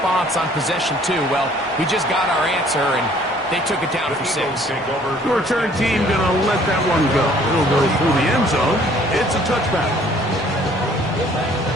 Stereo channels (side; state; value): both; normal; correlation 0.57